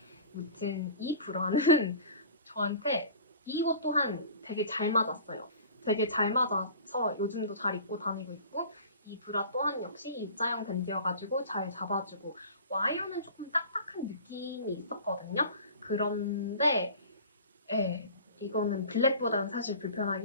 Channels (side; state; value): both; inverted; correlation -0.41